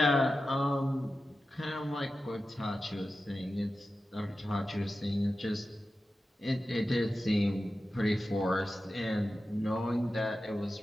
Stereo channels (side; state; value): both; normal; correlation 0.93